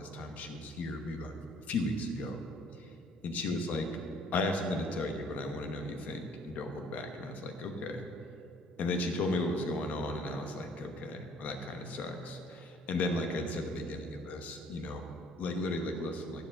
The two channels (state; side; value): normal; both; correlation 0.58